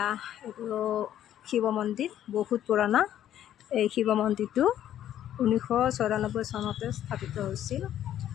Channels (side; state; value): right; quieter; 11.3 dB